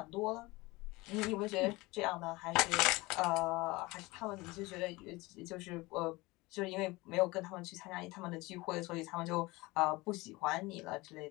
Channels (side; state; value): right; quieter; 22.1 dB